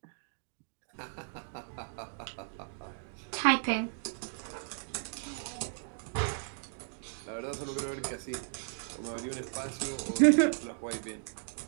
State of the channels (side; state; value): left; silent; digital silence